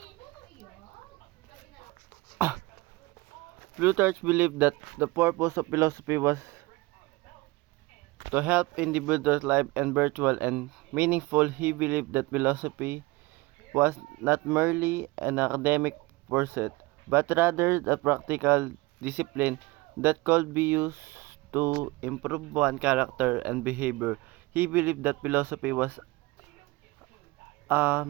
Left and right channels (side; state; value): left; quieter; 22.3 dB